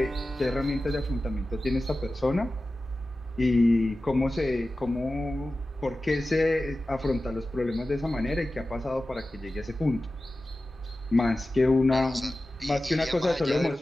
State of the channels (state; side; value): normal; both; correlation 0.95